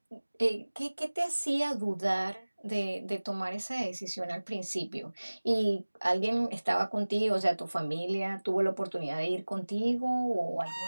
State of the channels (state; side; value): inverted; both; correlation -1.00